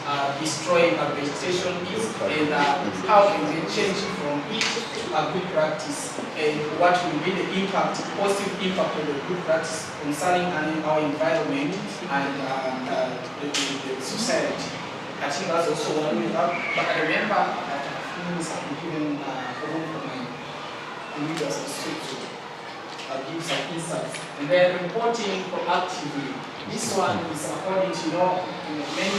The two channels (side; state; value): both; identical; correlation 1.00